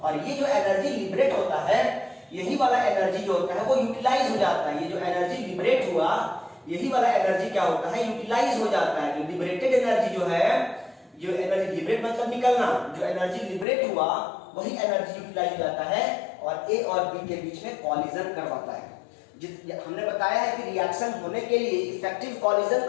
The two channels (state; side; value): drops out; right; at 13.7 s